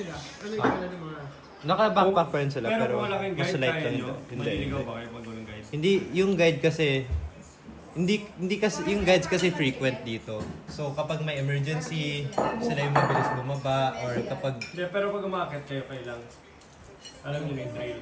Ano yung pala ng mga... Naka-backpack pa rin sila. Pero kung malaking mas guide light kaya lang. nyo, Hindi. maliligaw ba kayo pag walang guide? Hindi, yung guide kasi, hindi kasi, yung guides kasi frequent dito. So kapag may emergency, sila yung mabilis bumaba, or kapag, Hindi, pero pag umakit kayo lang, alam niyo na yung trail.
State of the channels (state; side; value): identical; both; correlation 1.00